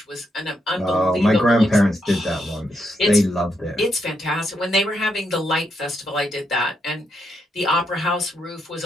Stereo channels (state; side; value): normal; both; correlation 0.80